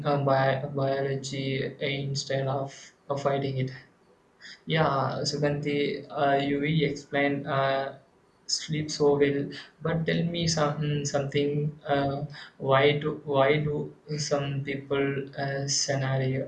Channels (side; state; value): both; identical; correlation 1.00